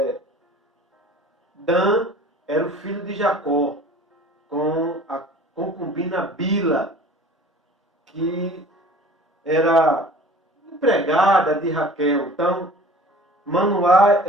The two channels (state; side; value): normal; both; correlation 0.45